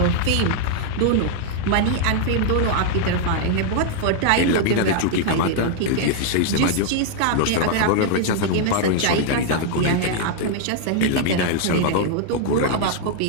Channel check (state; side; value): different; both; correlation 0.00